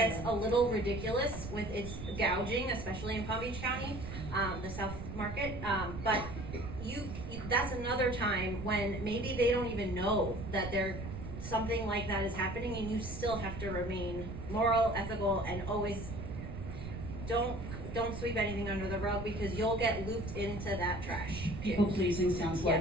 a little ridiculous with its gouging, especially in Palm Beach County, the South Market, but that's another time when maybe they don't even know that something like that is happening, and you still have to remain moral, ethical, and always don't sweep anything under the rug, because you'll get looped into that trash. People pleasing sounds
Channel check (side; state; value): right; noise; rumble, 8 dB below the sound